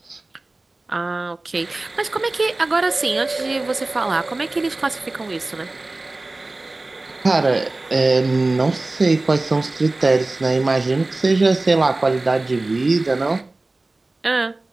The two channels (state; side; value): quieter; left; 3.0 dB